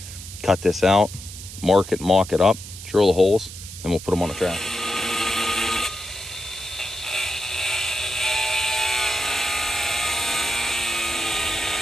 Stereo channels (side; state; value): right; noise; hiss, 13 dB below the sound